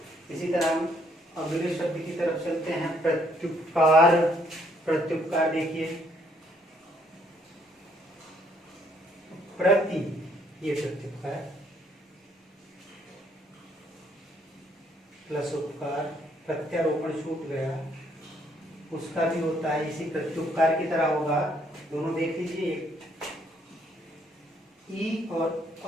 इसी तरह हम अगले शब्द की तरफ चलते हैं, प्रत्युपकार। प्रत्युपकार देखिए, प्रति, ये प्रत्युपकार, प्लस उपकार, प्रत्यारोपण छूट गया, उसका भी होता है इसी प्रत्युपकार की तरह होगा। दोनों देख लीजिए, ई और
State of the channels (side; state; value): both; normal; correlation 0.68